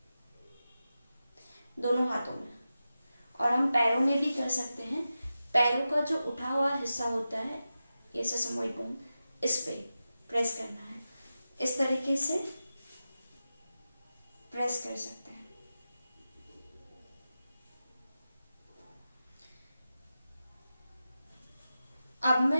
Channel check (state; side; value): inverted; both; correlation -0.92